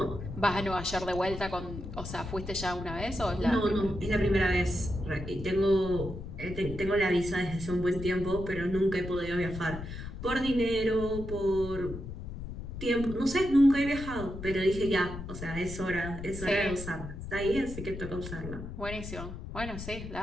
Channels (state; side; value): noise; left; rumble, 9 dB below the sound